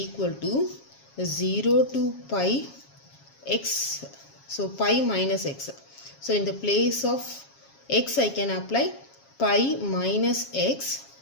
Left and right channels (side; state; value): right; late; 7.3 ms